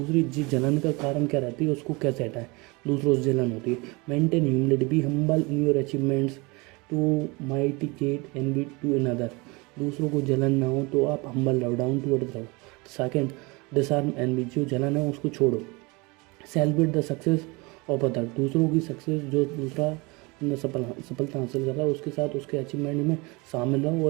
चीज जलन का कारण क्या रहती है, उसको कैसे हटाएं, दूसरों से जलन होती है। Maintain humility, be humble in your achievements to mitigate envy to another, दूसरों को जलन ना हो तो आप हम्बल रहो, डाउन टू अर्थ रहो। सेकंड, डिसआर्म एनवी, जो जलन है उसको छोड़ो। Celebrate the success of other, दूसरों की सक्सेस, जो दूसरा सफलता हासिल कर रहा है उसके साथ उसके अचीवमेंट में शामिल रहो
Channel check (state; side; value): quieter; left; 26.3 dB